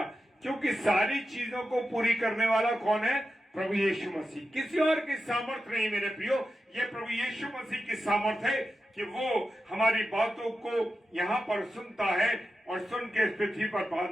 क्योंकि सारी चीजों को पूरी करने वाला कौन है? प्रभु यीशु मसीह। किसी और की सामर्थ नहीं मेरे प्रियो, ये प्रभु यीशु मसीह की सामर्थ है कि वो हमारी बातों को यहां पर सुनता है और सुन के इस पृथ्वी पर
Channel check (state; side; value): normal; both; correlation 0.91